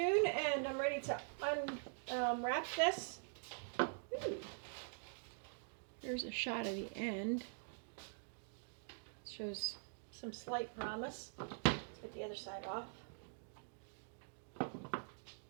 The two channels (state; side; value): silent; left; digital silence